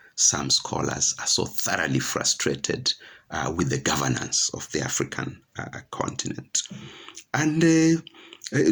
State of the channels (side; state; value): both; identical; correlation 1.00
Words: some scholars are so thoroughly frustrated with the governance of the African continent. And